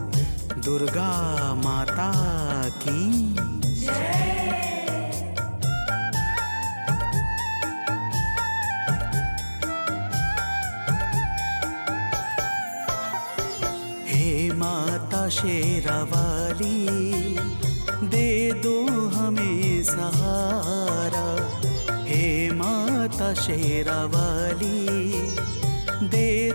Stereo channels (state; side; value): inverted; both; correlation -1.00